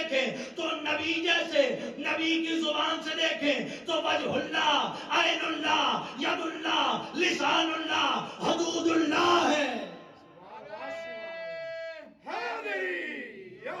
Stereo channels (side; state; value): both; identical; correlation 1.00